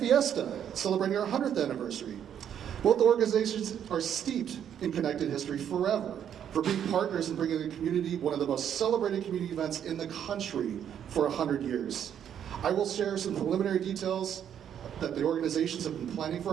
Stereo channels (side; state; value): left; quieter; 9.2 dB